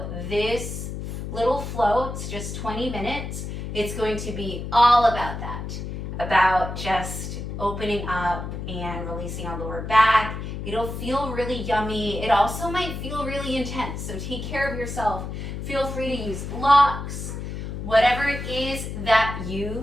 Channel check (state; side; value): noise; left; hum, 6 dB below the sound